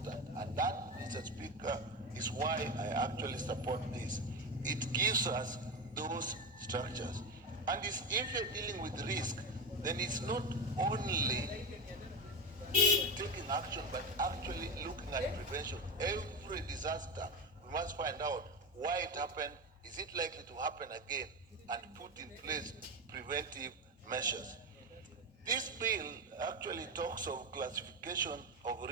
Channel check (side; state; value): both; normal; correlation 0.19